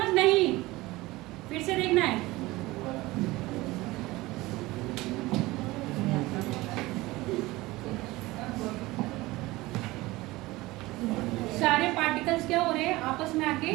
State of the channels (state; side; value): quieter; left; 19.9 dB